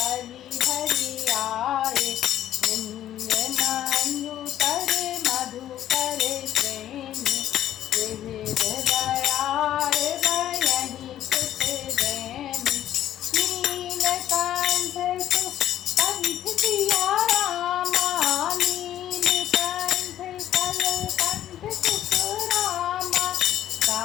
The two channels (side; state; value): right; quieter; 12.0 dB